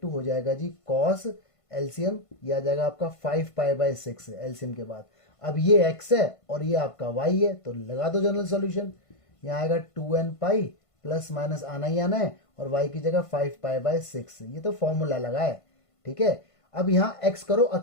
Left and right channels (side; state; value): right; late; 1.5 ms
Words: हो जाएगा जी cos, एलसीएम ये आ जाएगा आपका 5π/6 एलसीएम के बाद। अब ये x है और ये आपका y है, तो लगा दो जनरल सॉल्यूशन। यहाँ आएगा 2n पाई, प्लस माइनस आना ही आना है, और y की जगह 5π/6, ये तो फॉर्मूला लगा है, ठीक है। अब यहाँ x करो